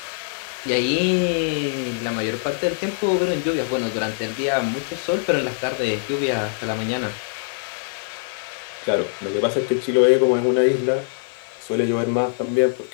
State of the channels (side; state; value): right; silent; 63 dB below the other